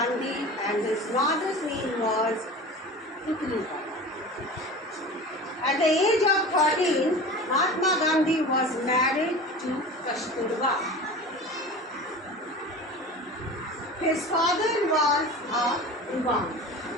and his mother's name was Putlika. At the age of 13, Mahatma Gandhi was married to Kasturba. His father was a Diwan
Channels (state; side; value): normal; both; correlation 0.35